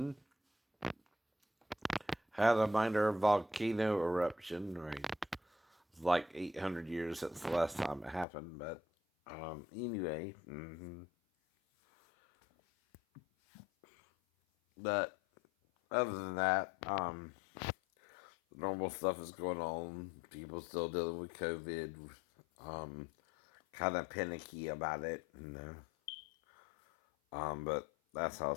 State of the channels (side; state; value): right; drops out; at 8.2 s